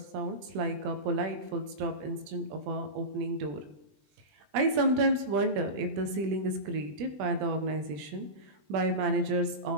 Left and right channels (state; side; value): late; left; 20 ms